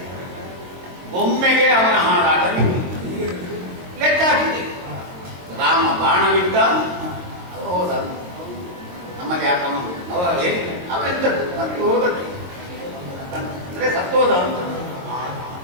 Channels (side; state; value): left; late; 22 ms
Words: ಒಮ್ಮೆಗೆ ಅವನ ಹಾರಾಟ ಲೆಕ್ಕ ಹಾಕಿದೆ. ರಾಮ ಬಾಣವಿದ್ದ, ಹೋದ. ನಮ್ಮಲ್ಲಿ ಯಾಕಮ್ಮ ಅವೆಂತದ್ದು ಸತ್ತು ಹೋದದ್ದು ಅಂದ್ರೆ ಸತ್ತೋದ ಅಂತ